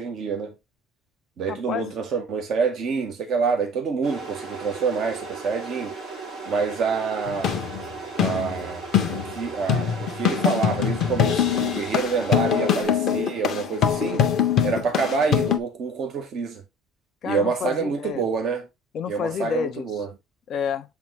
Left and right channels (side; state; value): both; normal; correlation 0.40